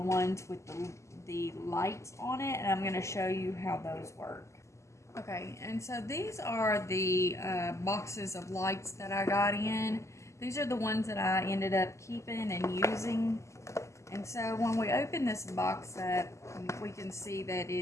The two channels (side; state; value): right; late; 0.14 ms